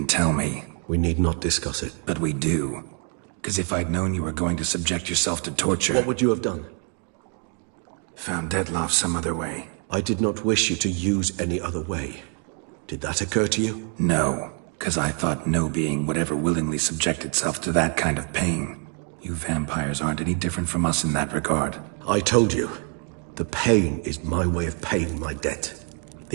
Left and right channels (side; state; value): left; quieter; 39.9 dB